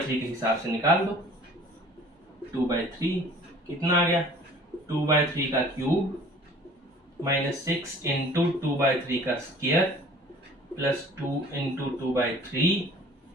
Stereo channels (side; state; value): both; normal; correlation 0.49